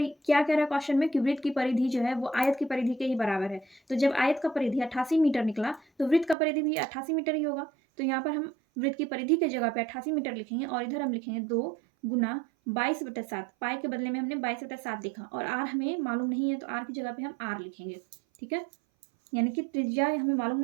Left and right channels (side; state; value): left; drops out; at 6.4 s